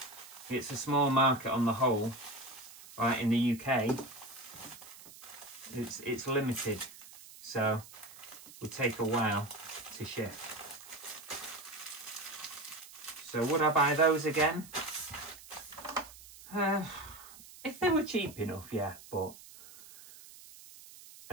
it's a small market on the whole. Right, in the UK, it's limited, so it would take a while to ship. So would I buy those again? If they were cheap enough, yeah, but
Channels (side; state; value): right; noise; hiss, 18 dB below the sound